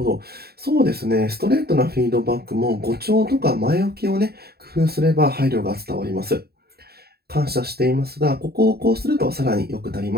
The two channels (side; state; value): left; late; 0.46 ms